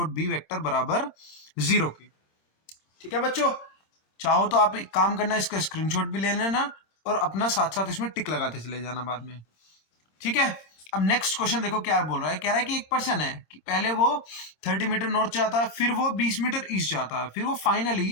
B vector बराबर जीरो के। ठीक है बच्चों, चाहो तो आप एक काम करना, इसका स्क्रीनशॉट भी ले लेना और अपना साथ साथ इसमें टिक लगाते चले जाना बाद में। ठीक है, अब नेक्स्ट क्वेश्चन देखो क्या बोल रहा है। कह रहा है कि एक पर्सन है कि पहले वो 30 मीटर नॉर्थ जाता है, फिर वो 20 मीटर ईस्ट जाता है, फिर वो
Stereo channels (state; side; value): late; right; 26 ms